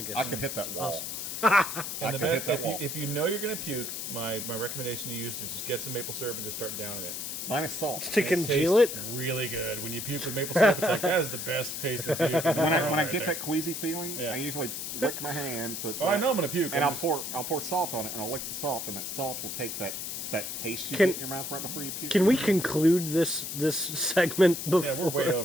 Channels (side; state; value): left; noise; hiss, 5 dB below the sound